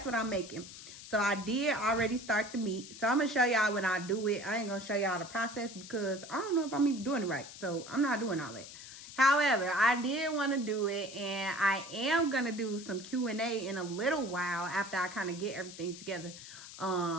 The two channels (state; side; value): noise; left; hiss, 14 dB below the sound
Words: what I'm making. So I did already start the meat. So I'm going to show y'all when I do it. I ain't going to show y'all the process because I don't know if I'm even doing it right. So I'm not doing all that. However, I did want to do it, and I am going to do some Q&A in a little while after I kind of get everything together.